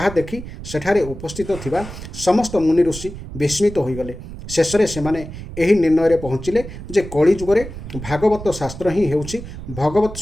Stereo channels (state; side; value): noise; right; rumble, 11 dB below the sound